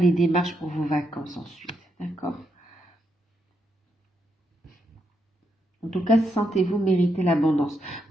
les démarches pour vos vacances ensuite. D'accord? En tout cas, sentez-vous mériter l'abondance.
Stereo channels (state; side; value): normal; both; correlation 0.80